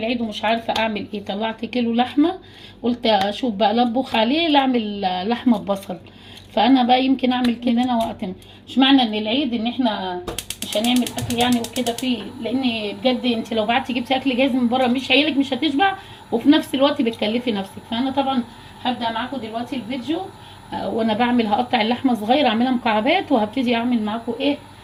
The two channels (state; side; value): identical; both; correlation 1.00